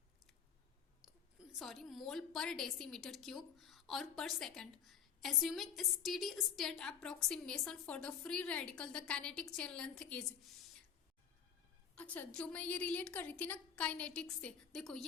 mole per decimeter cube or per second. Assuming a steady state approximation for the free radical, the kinetic chain length is। अच्छा जो मैं ये रिलेट कर रही थी ना काइनेटिक्स से, देखो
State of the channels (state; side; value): quieter; right; 7.9 dB